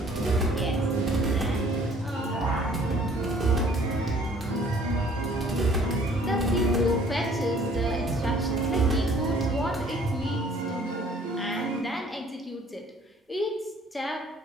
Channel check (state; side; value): normal; both; correlation 0.56